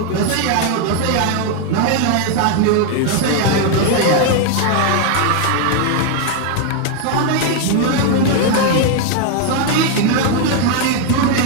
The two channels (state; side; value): different; both; correlation 0.00